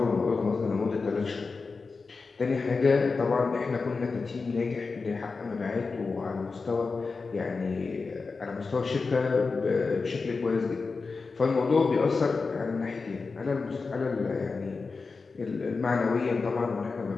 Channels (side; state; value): right; quieter; 4.4 dB